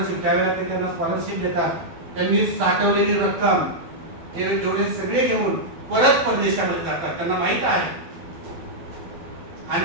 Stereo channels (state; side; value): late; left; 12 ms